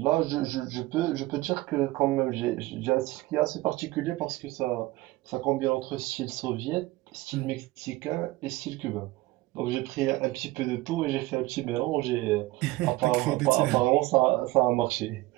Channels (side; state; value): left; quieter; 19.3 dB